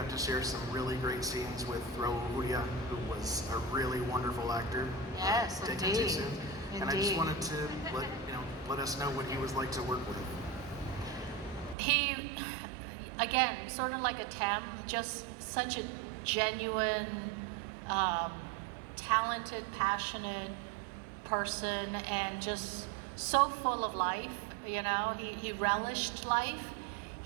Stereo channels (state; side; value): drops out; left; at 11.8 s